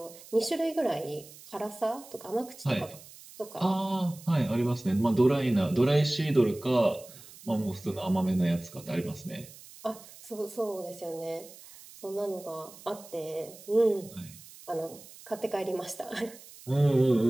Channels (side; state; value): right; noise; hiss, 19 dB below the sound